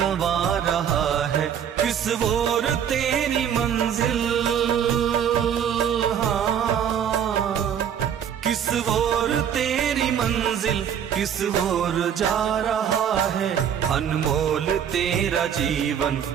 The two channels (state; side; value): quieter; left; 8.7 dB